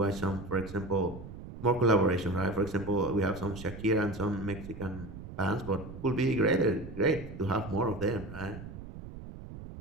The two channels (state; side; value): noise; right; rumble, 12 dB below the sound